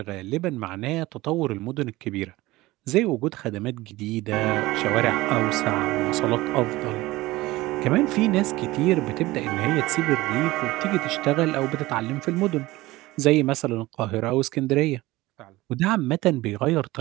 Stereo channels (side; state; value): left; quieter; 19.1 dB